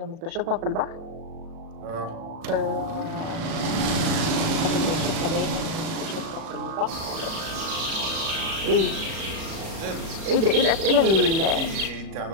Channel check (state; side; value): late; left; 37 ms